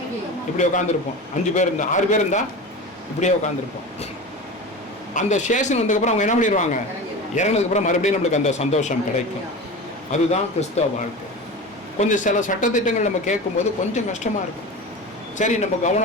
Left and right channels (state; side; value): normal; both; correlation 0.30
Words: இப்படி உட்காந்துருப்போம். 5 பேர் இருந்தால் 6 பேர் இருந்தால் இப்படியே உட்காந்துருப்போம். அந்த ஸ்டேஷன் வந்ததுக்கப்புறம் அவங்க என்ன பண்ணிடுவாங்க, இறங்கினதுக்கப்புறம் மறுபடியும் நம்மளுக்கு அந்த சந்தோஷம் கிடைக்கும். அதுதான் கிறிஸ்தவ வாழ்க்கை. கொஞ்சம் சில சட்டத்திட்டங்கள் நம்ம கேட்கும்போது கொஞ்சம் கஷ்டமாக இருக்கும். சரி, நம்ம